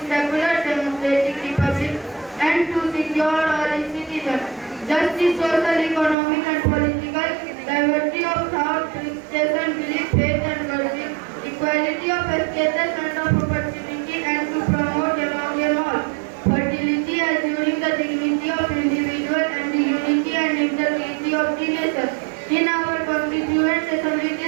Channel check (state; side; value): drops out; left; at 6.2 s